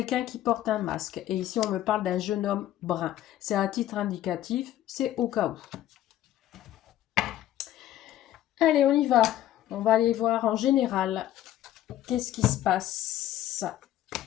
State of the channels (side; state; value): right; quieter; 13.0 dB